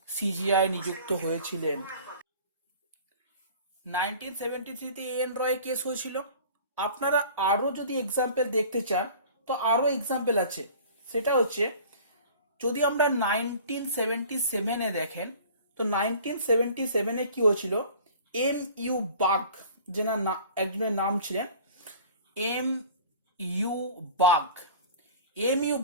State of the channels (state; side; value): inverted; both; correlation -0.45